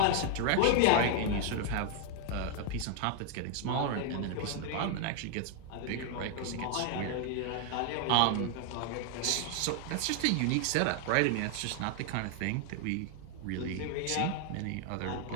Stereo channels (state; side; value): different; both; correlation 0.00